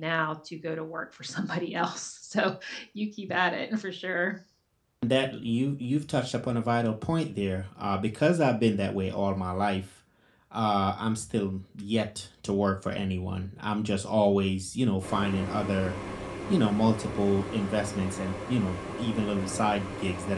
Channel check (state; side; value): identical; both; correlation 1.00